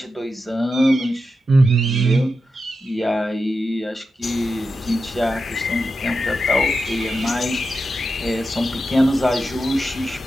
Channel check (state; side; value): normal; both; correlation 0.89